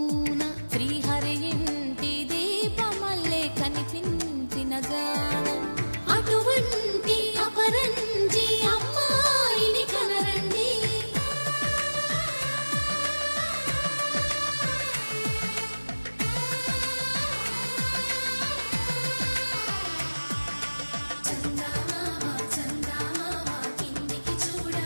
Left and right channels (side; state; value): both; inverted; correlation -1.00